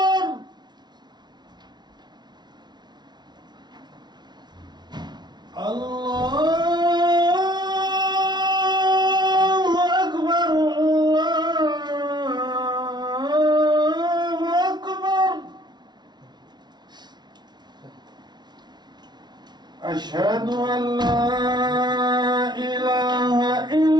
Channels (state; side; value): late; left; 0.20 ms